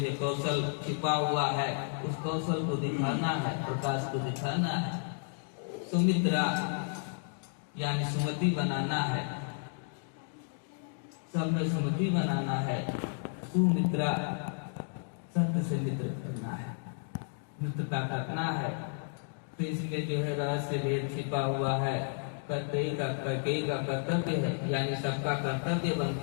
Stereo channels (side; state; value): right; silent; digital silence